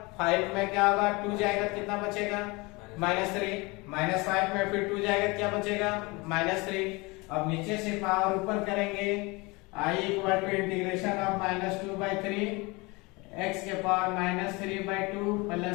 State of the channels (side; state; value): right; quieter; 25.4 dB